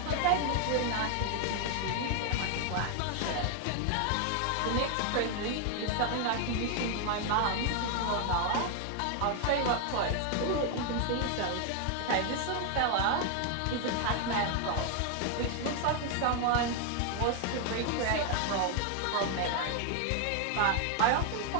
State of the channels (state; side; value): different; both; correlation 0.00